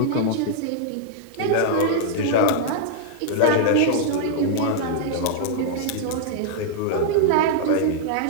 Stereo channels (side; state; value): both; different; correlation -0.01